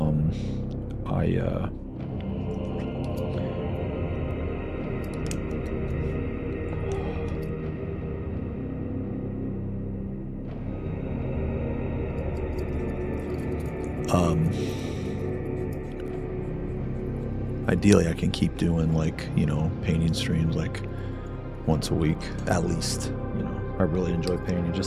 Ideally, I can keep doing, like, you know, painting streams, like, once a week, at least. You know, I really enjoy painting.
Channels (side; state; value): both; identical; correlation 1.00